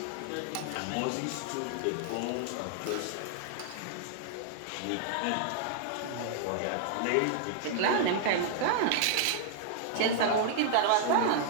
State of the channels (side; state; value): both; different; correlation 0.00